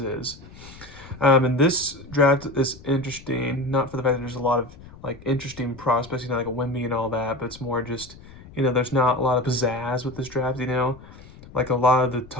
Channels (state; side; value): noise; left; rumble, 19 dB below the sound